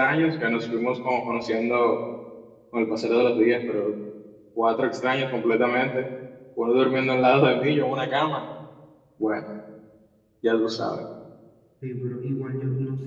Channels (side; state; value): both; identical; correlation 1.00